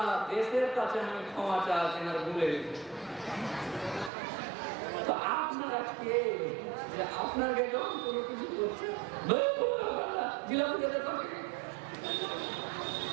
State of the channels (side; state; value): left; drops out; at 4.1 s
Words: দেশের কাছে আমি ক্ষমা চাচ্ছি না, ভুলে গেছি। তো আপনারা কে যে আপনাকে যখন কোনো কিছু করছে